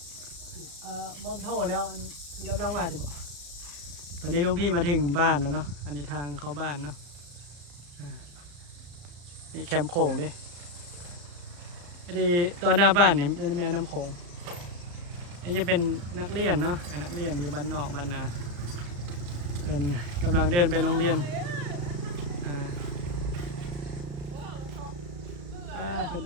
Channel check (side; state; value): left; late; 35 ms